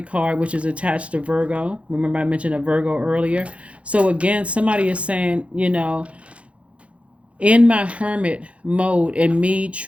card, which is attached to Virgo. Remember I mentioned a Virgo earlier. So again, somebody is saying, in my hermit mode and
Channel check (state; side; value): late; left; 0.062 ms